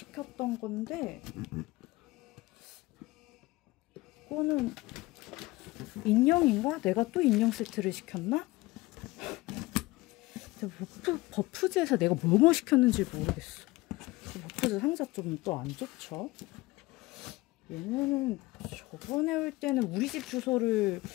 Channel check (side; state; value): right; quieter; 20.5 dB